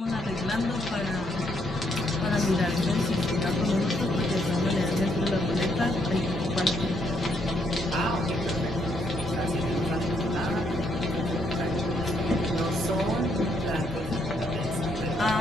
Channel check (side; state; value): both; normal; correlation 0.73